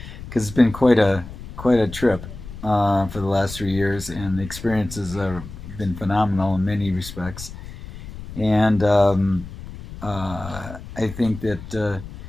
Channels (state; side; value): noise; left; rumble, 13 dB below the sound